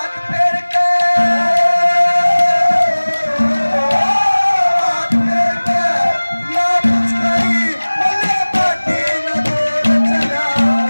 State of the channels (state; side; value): inverted; both; correlation -1.00